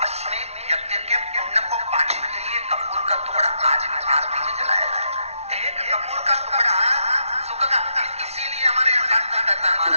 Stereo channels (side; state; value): left; late; 0.31 ms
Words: अश्वमेध यज्ञ के पुण्य को पाने के लिए कपूर का टुकड़ा आज भी आरती में जलाया जाए। एक कपूर का टुकड़ा सुख का, इसीलिए हमारे यहाँ शास्त्र कहता है